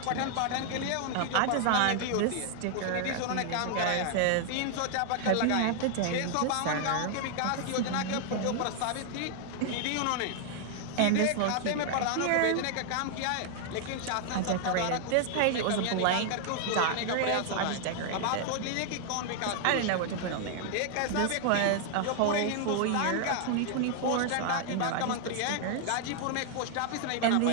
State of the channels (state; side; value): different; both; correlation 0.00